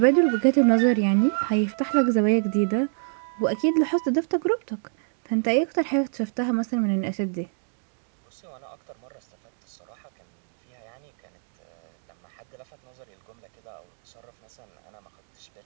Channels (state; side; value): silent; left; 61 dB below the other